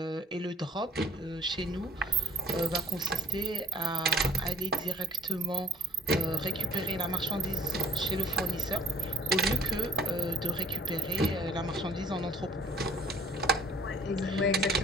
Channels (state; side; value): normal; both; correlation 0.54